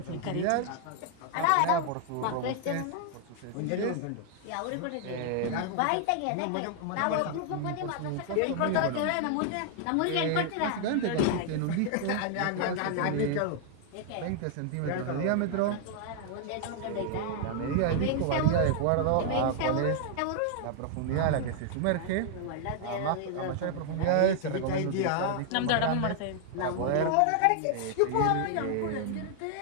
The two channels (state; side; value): different; both; correlation 0.00